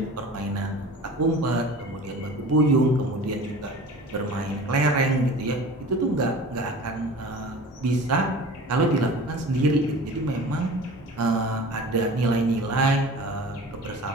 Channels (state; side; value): normal; both; correlation 0.40